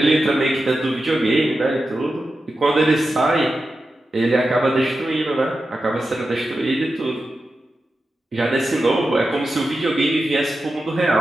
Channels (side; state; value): both; normal; correlation 0.91